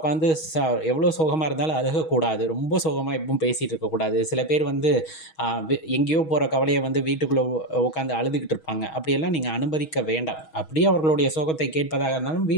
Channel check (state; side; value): late; right; 6.3 ms